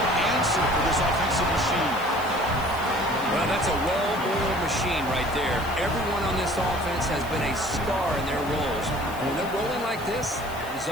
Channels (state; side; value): noise; left; hiss, 18 dB below the sound